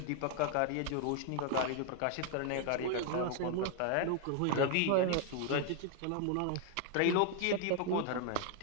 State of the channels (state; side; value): different; both; correlation 0.00